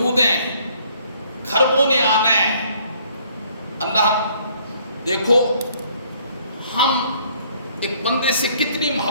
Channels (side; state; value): both; inverted; correlation -0.63